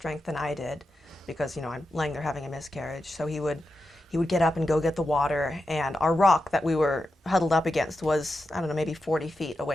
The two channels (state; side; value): normal; both; correlation 0.89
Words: than I did because, you know, I'm laying there having a miscarriage. So he would get up and go get the water, and our rock that we were huddled up against was, I don't know, maybe 40 feet